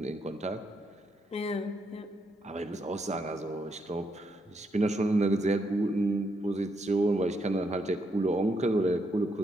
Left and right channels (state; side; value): normal; both; correlation 0.78